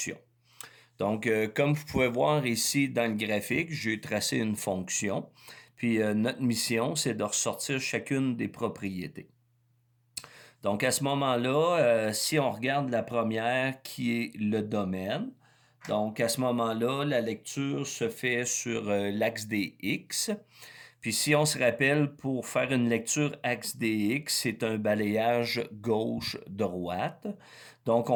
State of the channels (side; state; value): both; identical; correlation 1.00